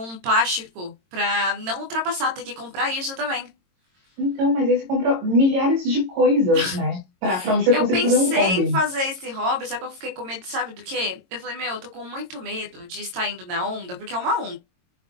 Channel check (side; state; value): left; late; 22 ms